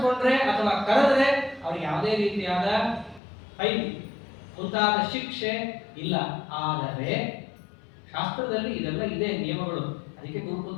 ಅಥವಾ ಕರೆದ್ರೆ ಅವ್ರಿಗೆ ಯಾವುದೇ ರೀತಿಯಾದ ಫೈನ್ ಮುಂತಾದ ಶಿಕ್ಷೆ ಇಲ್ಲ. ಆದರೆ ಶಾಸ್ತ್ರದಲ್ಲಿ ಇದೆಲ್ಲ ಇದೆ ನಿಯಮಗಳು. ಅದಕ್ಕೆ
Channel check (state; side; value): drops out; right; at 3.2 s